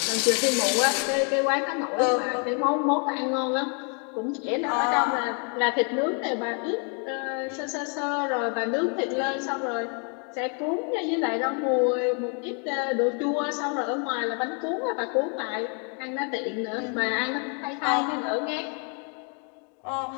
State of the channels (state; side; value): quieter; right; 39.4 dB